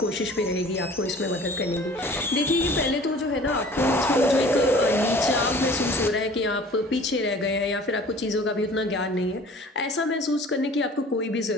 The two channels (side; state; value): both; normal; correlation 0.47